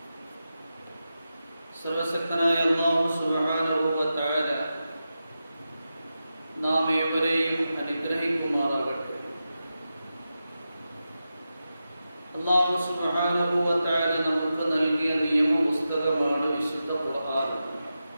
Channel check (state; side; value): inverted; both; correlation -0.91